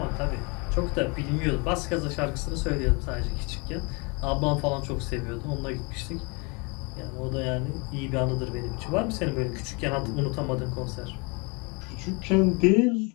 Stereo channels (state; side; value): quieter; right; 30.6 dB